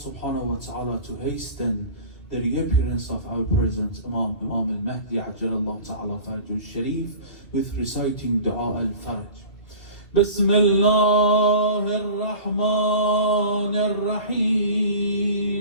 wa ta'ala to hasten the reappearance of our present Imam al-Mahdi Ajjalallahu Ta'ala Farajul Sharif with reciting Dua al-Faraj. بسم الله الرحمن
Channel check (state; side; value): late; right; 2.2 ms